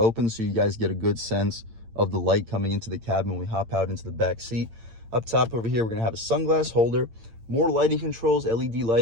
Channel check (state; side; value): late; left; 8.8 ms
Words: so you guys get a good sense of the light coming into the cabin when we hop out into the back seat. Up top over here, we're gonna have a sunglass holder, more lighting controls, LED